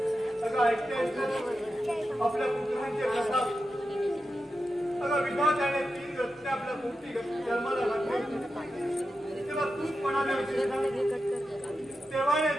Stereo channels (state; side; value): normal; both; correlation 0.90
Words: अगं ऐकतेस ना आपल्या पुत्रांचे प्रताप. अगं विधात्याने 3 रत्ने आपल्या पोटी जन्माला घातली, तेव्हा तूच म्हणाले होते ना, तेव्हाने